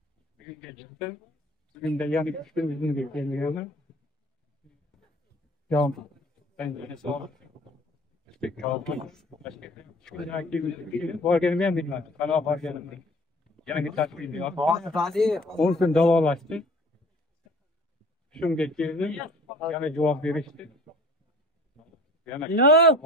Bugunga chiqdi. Bugunda yana 3 kun bizga kelmaganlar. Yo'q, ben sağ borganimni ham bilmadim. Qanaqa borganimni. Yana bittasi bilmayman. 10 kun davolashdi. Shunga keldim, yana javob berishdi. Yana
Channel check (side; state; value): both; normal; correlation 0.48